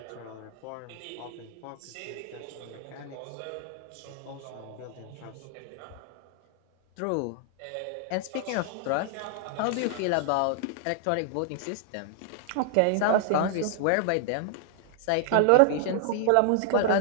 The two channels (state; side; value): different; both; correlation 0.00